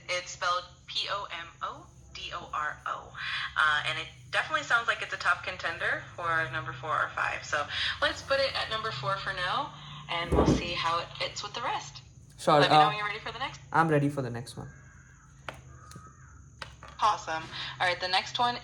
It's spelled Pomodoro. And it definitely sounds like it's a top contender for number 4 or 5. So let's put it at number 4 for now, and we'll see how it fits with the rest. Sure. Let me know when you're ready for the next. I'm ready for the next one. Awesome. All right, the next one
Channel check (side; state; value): both; identical; correlation 1.00